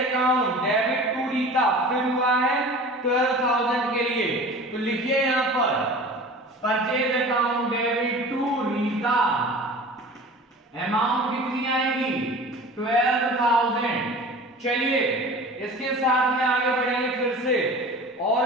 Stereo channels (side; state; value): both; normal; correlation 0.39